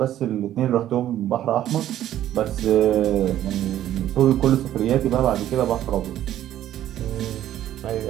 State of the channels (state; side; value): quieter; left; 12.3 dB